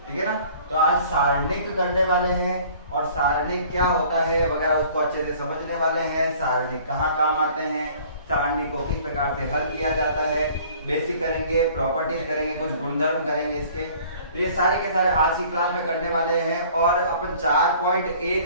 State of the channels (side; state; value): both; inverted; correlation -0.52